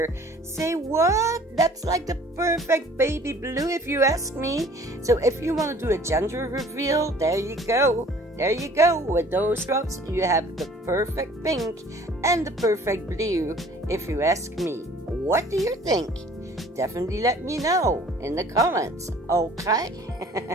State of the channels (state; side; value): normal; both; correlation 0.52